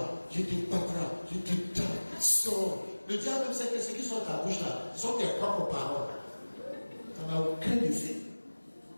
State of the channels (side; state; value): both; inverted; correlation -1.00